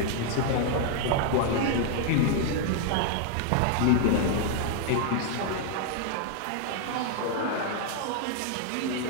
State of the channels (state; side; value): different; both; correlation 0.00